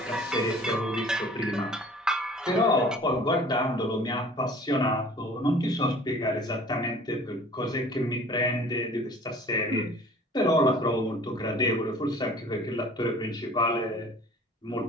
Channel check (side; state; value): both; normal; correlation 0.49